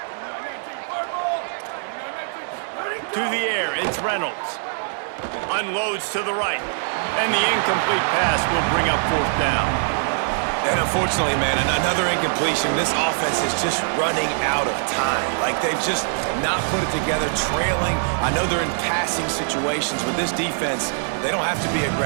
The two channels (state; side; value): silent; left; digital silence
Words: To the air, it's Reynolds. Unloads to the right. And the incomplete pass will bring up 4th down. And unfortunately, man, another incompletion. This offense is just running out of time. Like, they've just not put it together, trailing. I know they're in passing situations. With this defense, they don't have to be